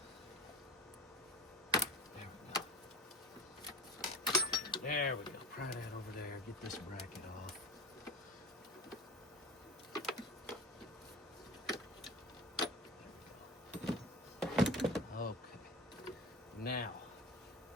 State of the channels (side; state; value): both; normal; correlation 0.34